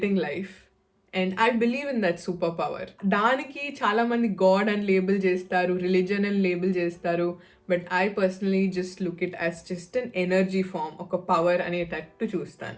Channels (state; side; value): identical; both; correlation 1.00